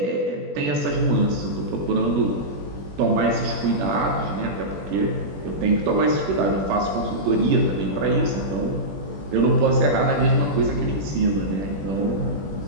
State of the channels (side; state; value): left; late; 21 ms